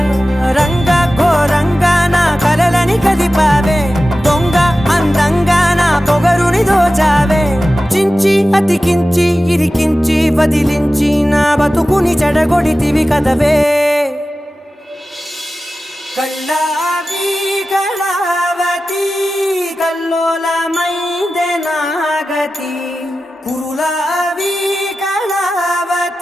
రంగ ఘోరంగా నా కలలని కదిపావే దొంగ అందంగా నా పొగరుని దోచావే చించి అతికించి ఇరికించి వదిలించి నా బతుకుని చెడగొడితివి కదవే కళ్ళావి కళావతి కల్లోలమైందే నాగతి కురులావి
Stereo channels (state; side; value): normal; both; correlation 0.95